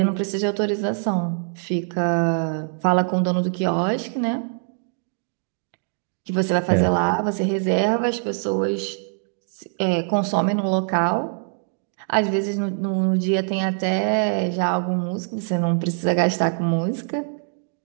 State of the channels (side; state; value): left; silent; 63 dB below the other